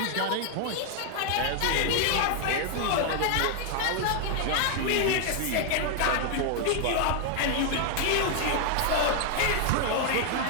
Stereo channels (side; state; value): both; different; correlation 0.00